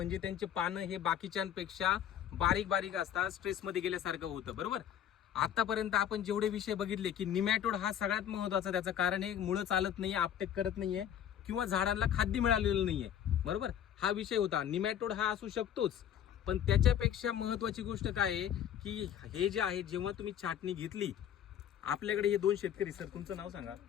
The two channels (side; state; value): right; quieter; 9.9 dB